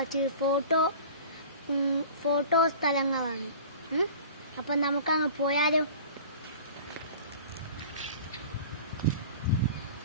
ഫോട്ടോ സ്ഥലങ്ങളാണ്. അപ്പം നമുക്കങ്ങ് പോയാലോ.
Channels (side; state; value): both; inverted; correlation -0.40